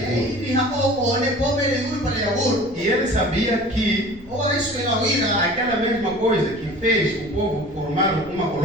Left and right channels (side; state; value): right; noise; rumble, 24 dB below the sound